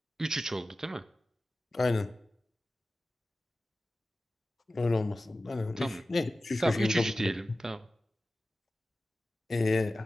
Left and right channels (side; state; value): both; normal; correlation 0.95